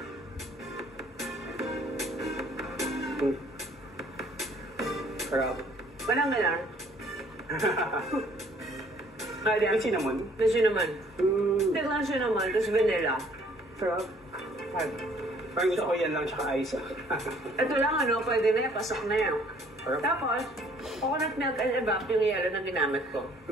Sarap. Walang galang. May cinnamon? May cinnamon. Tiglang cinnamon, tapos vanilla. Sarap. Parang gusto ko yan lang tsaka ice. Ito lang pwede na yan, pasok na yan. Tapos, coconut milk and evap yung yellow na ginamit ko.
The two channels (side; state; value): both; normal; correlation 0.59